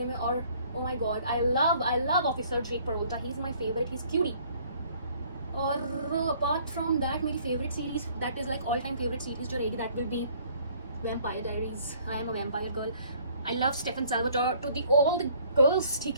में. और oh my god, I love officer Jake Peralta. He is my favourite, he is cutie. और अपार्ट फ्रॉम दैट मेरी favourite series that is like all time favourite series जो रहेगी that will be vampire diaries. I am a vampire girl. I love Stefan Salvatore. To the all the girls,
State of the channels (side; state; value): both; inverted; correlation -0.58